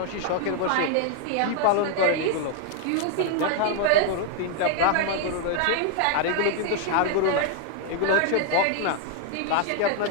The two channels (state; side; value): different; both; correlation 0.00